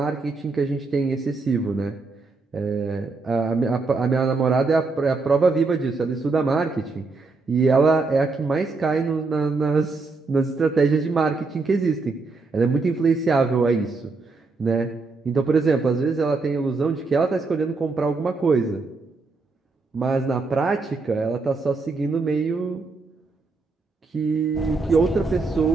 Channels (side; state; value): left; quieter; 3.9 dB